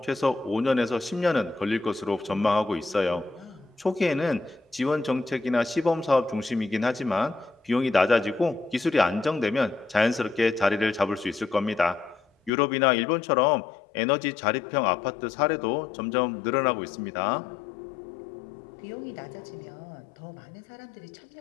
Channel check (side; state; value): right; drops out; at 12.5 s